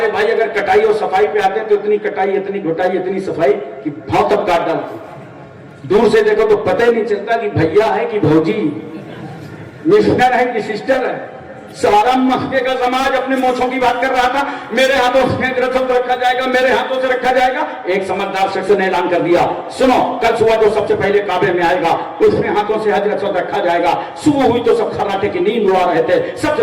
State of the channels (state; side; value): identical; both; correlation 1.00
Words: بھائی اگر کٹائی اور صفائی پہ آتے ہیں تو اتنی کٹائی اتنی گھٹائی اتنی صفائی کہ بھاؤ تک کاٹ ڈالتے، دور سے دیکھو تو پتہ ہی نہیں چلتا کہ بھیا ہے کہ بھوجی، مسٹر ہے کہ سسٹر ہے۔ سارا مکے کا سماج اپنے موچھوں کی بات کر رہا تھا، میرے ہاتھوں سے رسم رکھا جائے گا، میرے ہاتھوں سے رکھا جائے گا۔ ایک سمجھدار شخص نے اعلان کر دیا، سنو کل صبح جو سب سے پہلے کعبے میں آئے گا اس میں ہاتھوں سے حج رسم رکھا جائے گا۔ صبح ہوئی تو سب خراٹے کی نیند اڑا رہے تھے، سب